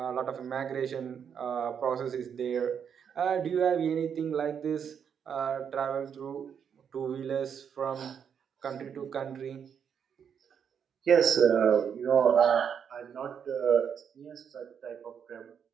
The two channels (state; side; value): quieter; left; 7.6 dB